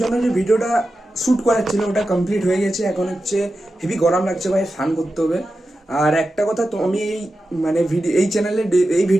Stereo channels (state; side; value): normal; both; correlation 0.92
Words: জন্য যে ভিডিওটা শ্যুট করার ছিল ওটা কমপ্লিট হয়ে গেছে। এখন হচ্ছে হেভি গরম লাগছে ভাই, স্নান করতে হবে। আর একটা কথা, তো আমি এই মানে এই চ্যানেলে এই